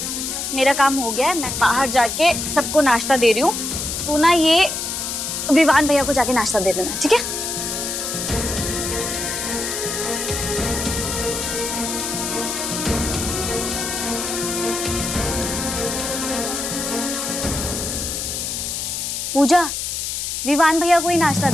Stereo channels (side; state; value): left; noise; hiss, 3 dB below the sound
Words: मेरा काम हो गया है, मैं बाहर जाके सबको नाश्ता दे रही हूँ। तू ना ये विवान भैया को जाके नाश्ता दे देना, ठीक है? पूजा, विवान भैया को ही नाश्ता